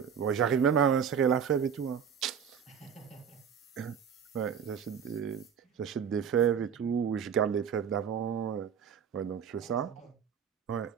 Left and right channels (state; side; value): quieter; left; 7.6 dB